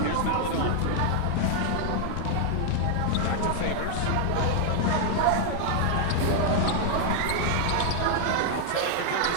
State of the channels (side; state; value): both; different; correlation 0.00